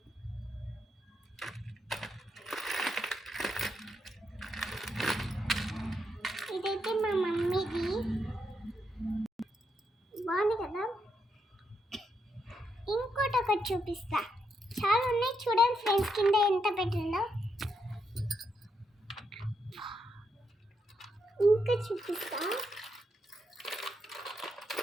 ఇదైతే మా మమ్మీది. బాగుంది కదా? ఒకటి చూపిస్తా. చాలా ఉన్నాయి చూడండి ఫ్రెండ్స్, కింద ఎంత పెట్టిందో. ఇంకా చూపిస్తా.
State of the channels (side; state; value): both; normal; correlation 0.80